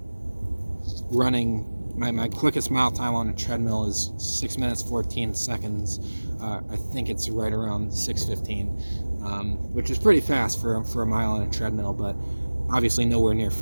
running, my quickest mile time on a treadmill is 6 minutes 14 seconds. I think it's right around 6:15, which is pretty fast for a mile on a treadmill, but obviously nowhere near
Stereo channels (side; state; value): both; inverted; correlation -1.00